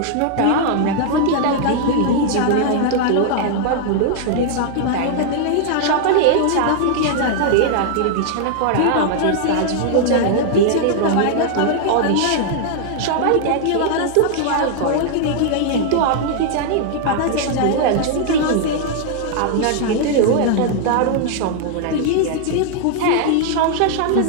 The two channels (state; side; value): different; both; correlation 0.00